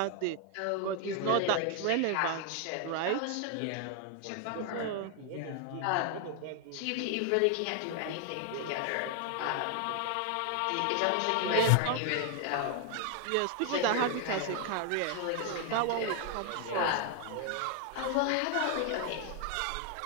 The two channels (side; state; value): both; different; correlation 0.00